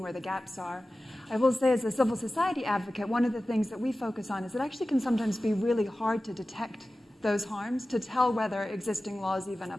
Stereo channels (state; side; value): normal; both; correlation 0.96